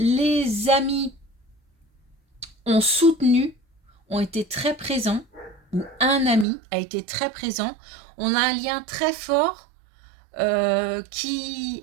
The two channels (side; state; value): left; drops out; at 6.5 s